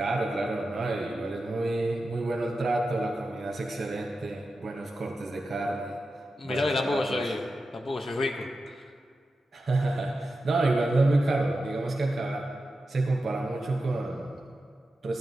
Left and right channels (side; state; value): both; normal; correlation 0.91